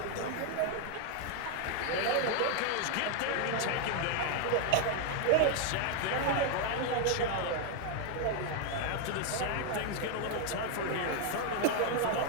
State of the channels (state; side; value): different; both; correlation 0.00